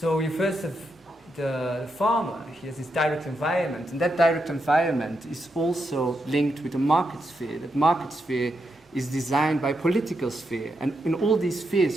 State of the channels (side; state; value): both; normal; correlation 0.83